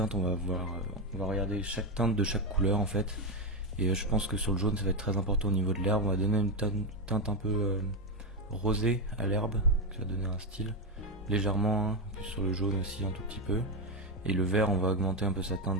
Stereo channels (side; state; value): both; normal; correlation 0.09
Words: on va regarder chaque teinte de chaque couleur en fait. Et je pense que sur le jaune, ça va être très important au niveau de l'herbe. On va donner une teinte un peu rosée à l'herbe, qui va donner un style légèrement, hein, puis sur le jaune aussi un tout petit peu. Et le vert, on va augmenter un peu sa